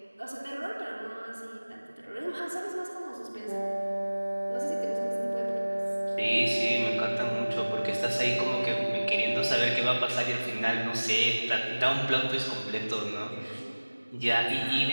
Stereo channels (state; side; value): inverted; both; correlation -1.00